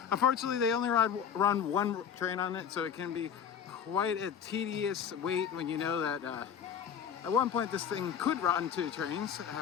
Unfortunately, they only run one train on it, so it can be quite a tedious wait when you know that at one point this thing could run 2 trains,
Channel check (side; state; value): right; quieter; 8.0 dB